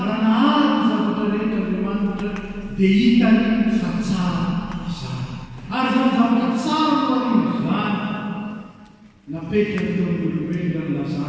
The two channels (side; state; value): both; identical; correlation 1.00